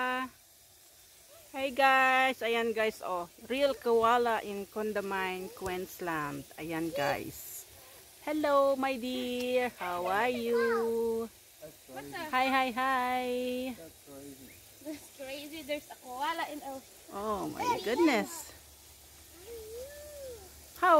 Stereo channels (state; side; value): identical; both; correlation 1.00